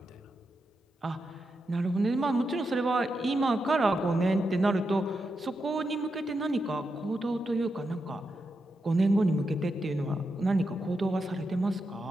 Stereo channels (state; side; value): normal; both; correlation 0.86